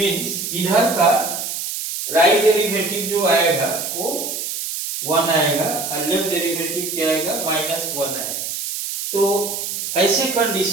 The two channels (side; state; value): right; noise; hiss, 5 dB below the sound